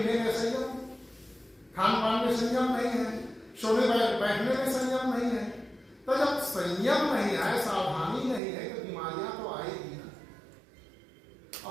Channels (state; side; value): drops out; left; at 8.4 s